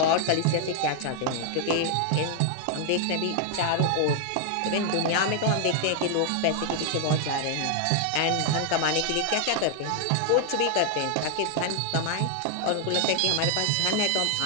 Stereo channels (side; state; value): both; different; correlation 0.00